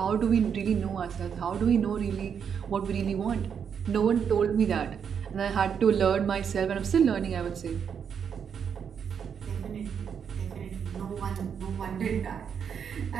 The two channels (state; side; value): quieter; left; 7.4 dB